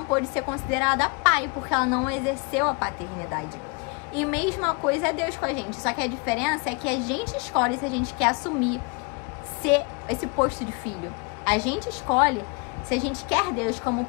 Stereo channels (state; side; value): quieter; right; 32.4 dB